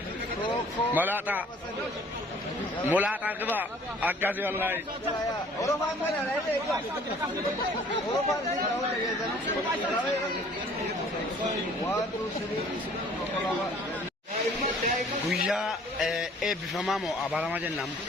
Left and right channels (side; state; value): both; normal; correlation 0.54